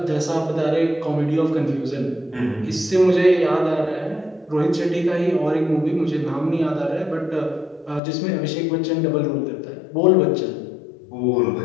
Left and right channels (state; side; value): drops out; right; at 8.0 s